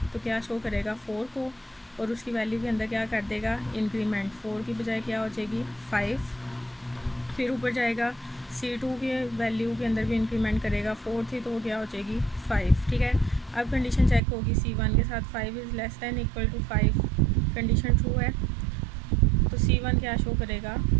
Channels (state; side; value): drops out; left; at 14.2 s